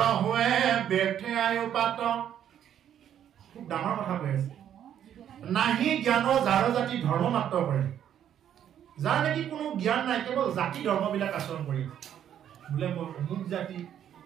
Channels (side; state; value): left; quieter; 10.0 dB